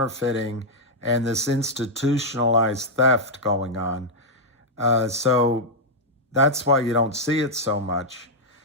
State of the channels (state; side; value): normal; both; correlation -0.04